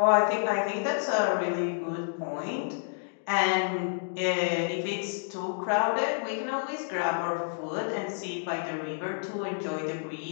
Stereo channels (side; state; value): right; silent; digital silence